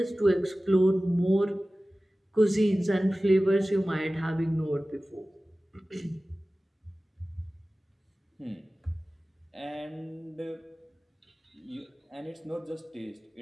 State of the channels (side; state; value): both; normal; correlation 0.97